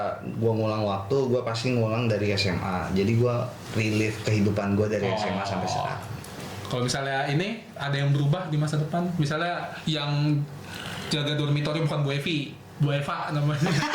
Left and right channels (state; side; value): identical; both; correlation 1.00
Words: gue ngulang waktu, gue pasti ngulang dari SMA. Jadi gue relive kehidupan gue dari SMA sampai sekarang. Kalau misalnya ini ada yang berubah di masa depan, misalnya yang jaga dormitory bukan Bu Evi, Bu Eva namanya.